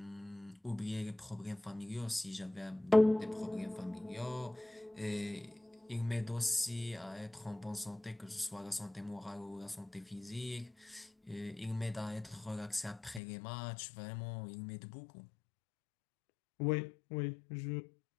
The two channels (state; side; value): drops out; right; at 13.2 s